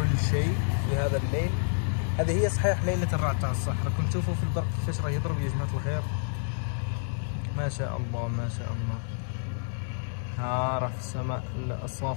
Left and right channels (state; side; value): silent; right; digital silence